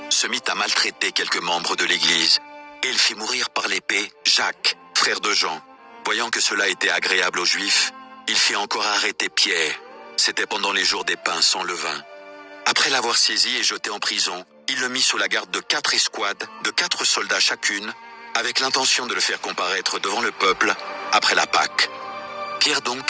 se mit à maltraiter quelques membres de l'Église, et il fit mourir par l'épée Jacques, frère de Jean. Voyant que cela était agréable aux Juifs, il fit encore arrêter Pierre. C'était pendant les jours des pains sans levain. Après l'avoir saisi et jeté en prison, il le mit sous la garde de 4 escouades, de 4 soldats chacune, avec l'intention de le faire comparaître devant le peuple après la Pâque. Pierre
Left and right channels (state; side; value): identical; both; correlation 1.00